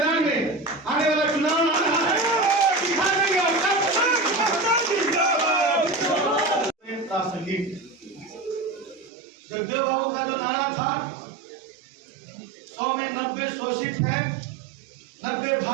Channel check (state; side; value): drops out; left; at 9.1 s